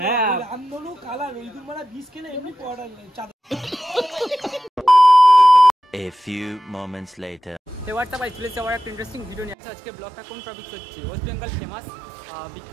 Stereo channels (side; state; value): left; drops out; at 9.6 s